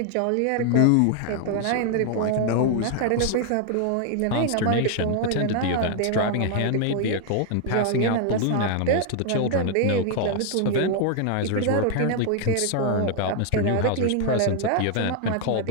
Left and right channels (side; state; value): both; different; correlation 0.00